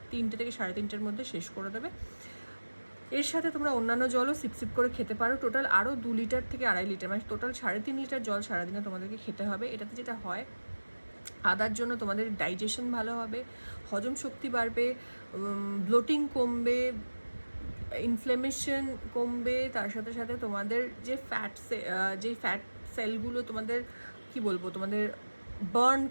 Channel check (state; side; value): inverted; both; correlation -1.00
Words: 3টে থেকে 3:30টের মধ্যে শেষ করে দেবে। এর সাথে তোমরা অন্যান্য জলও সিপ করে খেতে পারো। টোটাল আরও 2 লিটার থেকে 2.5 লিটার, মানে টোটাল 3.5 লিটার জল সারাদিনে তোমাদেরকে খেতে হবে। এটাতে যেটা হয়, আদার জন্য তোমাদের ডাইজেশন ভালো হবে, হজম শক্তি বাড়বে, ব্লোটিং কমবে, ইনফ্লেমেশন কমবে। তার সাথে সাথে তোমাদের যে ফ্যাট সেলগুলো তোমাদের কি বলবো, তোমাদের বার্ন